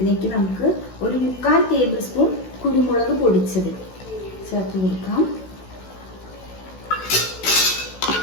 നമുക്ക് ഒരു 3/4 ടേബിൾ സ്പൂൺ കുരുമുളക് പൊടിച്ചത് ചേർത്ത് കൊടുക്കാം.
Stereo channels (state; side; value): late; right; 16 ms